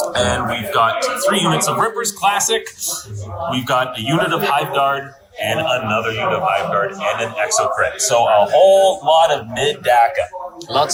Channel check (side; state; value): both; identical; correlation 1.00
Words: And we've got 3 units of Rippers Classic. We've got a unit of Hive Guard and another unit of Hive Guard and an Exocrit. So a whole lot of mid-DACA.